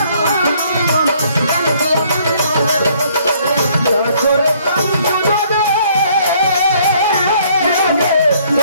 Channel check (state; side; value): inverted; both; correlation -0.63